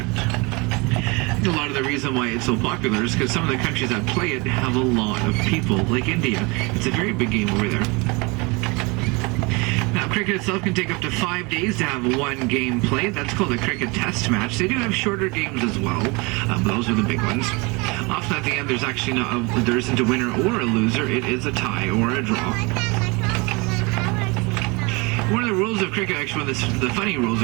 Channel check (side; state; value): left; quieter; 27.5 dB